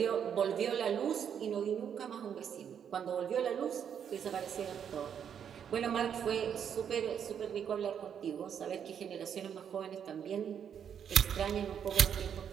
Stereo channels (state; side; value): quieter; left; 8.3 dB